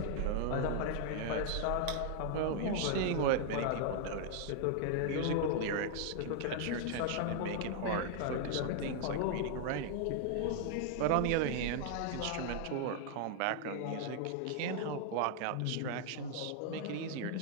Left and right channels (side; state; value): both; different; correlation 0.00